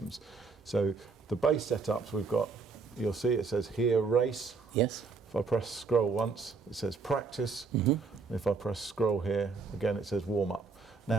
So the base setups we've got, you'll see it says here race. Yes. If I press scroll once it says practice. And if I press scroll here again it says warm up.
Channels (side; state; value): left; quieter; 4.6 dB